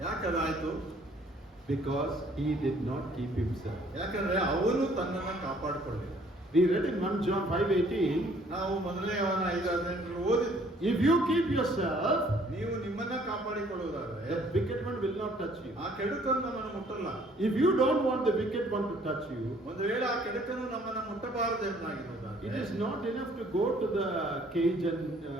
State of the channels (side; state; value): both; normal; correlation 0.60